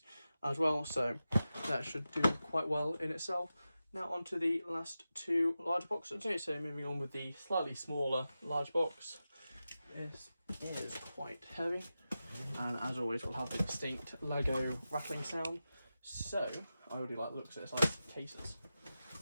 as well. So that should do quite well in itself. Now onto the last 2 large boxes. Okay, so moving on with the slightly smaller large box. This is quite heavy, and as always we'll have the distinct Lego rattling sound. So I really like the looks of this, like cases,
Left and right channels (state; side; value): inverted; both; correlation -0.92